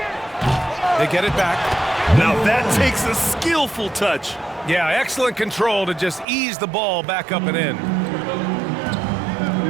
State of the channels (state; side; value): drops out; left; at 6.2 s